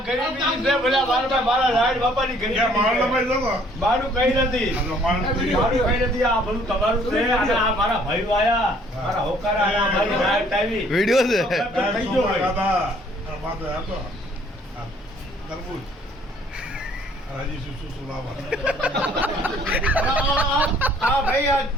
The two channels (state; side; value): normal; both; correlation 0.60